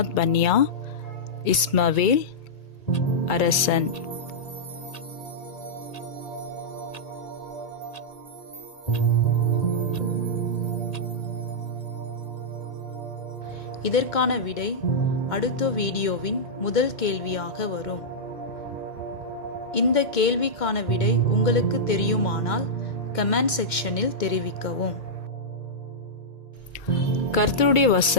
பன்யா, இஸ்மவேல், அரசன். இதற்கான விடை அடுத்த வீடியோவின் முதல் கேள்வியாக வரும். இந்த கேள்விக்கான விடை உங்களுக்கு தெரியுமானால் கமெண்ட் செக்ஷனில் தெரிவிக்கவும். கர்த்தருடைய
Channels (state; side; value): late; right; 2.3 ms